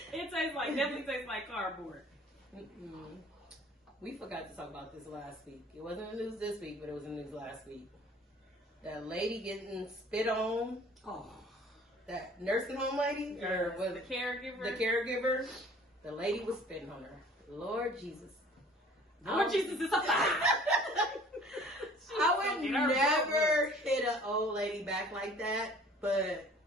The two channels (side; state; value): both; normal; correlation 0.51